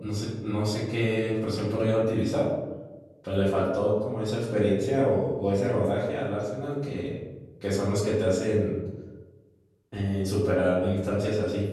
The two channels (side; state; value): both; identical; correlation 1.00